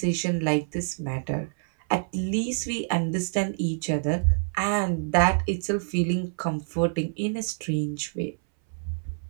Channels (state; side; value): silent; left; 60 dB below the other